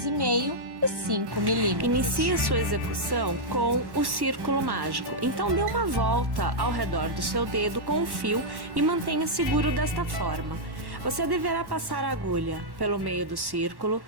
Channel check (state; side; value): late; left; 1.1 ms